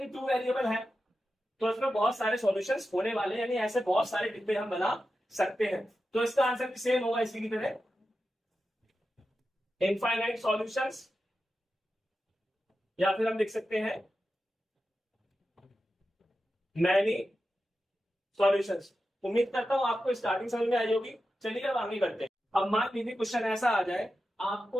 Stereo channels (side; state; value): both; normal; correlation 0.91